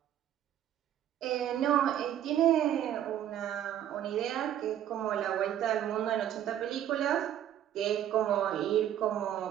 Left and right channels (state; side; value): quieter; left; 11.0 dB